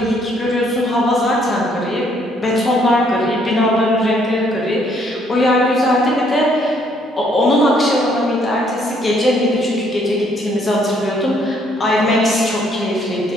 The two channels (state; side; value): normal; both; correlation 0.67